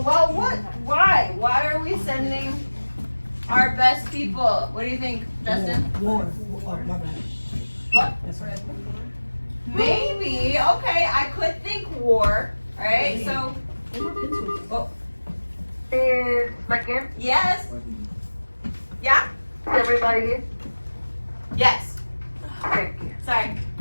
Well, what? Why? Why are we sending our best people? What do you think, Justin? War. Oh, my bad. What? That's right. Maybe. Okay, I could think war. Right? So. Oh. Yes. Yeah. Everybody here? Yes. Thank you. Sorry.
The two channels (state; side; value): inverted; both; correlation -1.00